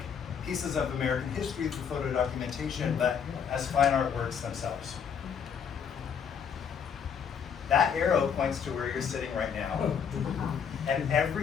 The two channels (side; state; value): right; quieter; 7.2 dB